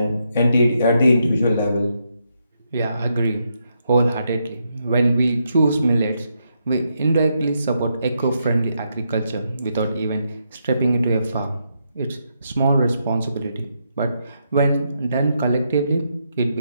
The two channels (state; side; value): inverted; both; correlation -0.80